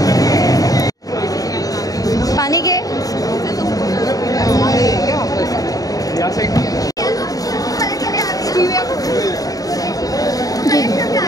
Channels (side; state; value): right; late; 0.18 ms